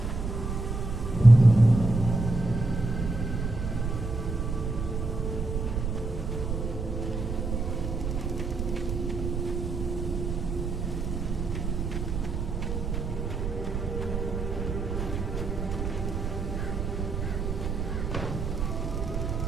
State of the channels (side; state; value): right; noise; rumble, 3 dB below the sound